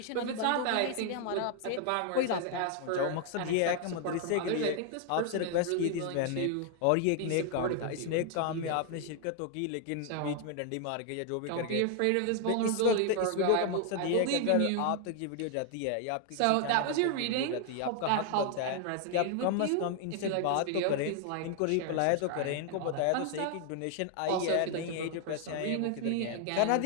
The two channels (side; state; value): both; different; correlation 0.00